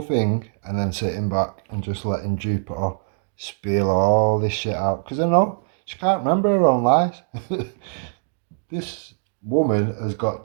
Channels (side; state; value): left; silent; digital silence